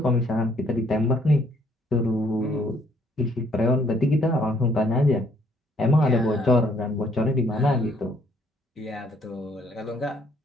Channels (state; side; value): normal; both; correlation 0.66